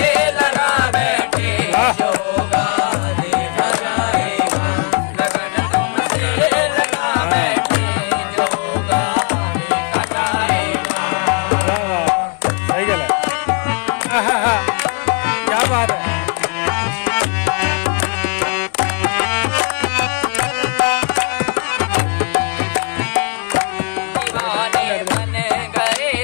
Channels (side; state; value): right; quieter; 36.8 dB